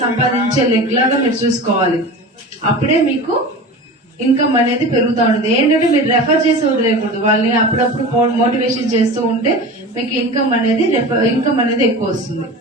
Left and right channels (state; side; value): normal; both; correlation 0.33